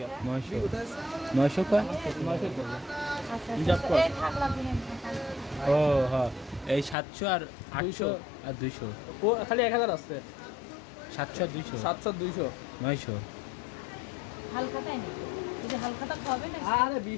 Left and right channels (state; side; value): drops out; right; at 7.0 s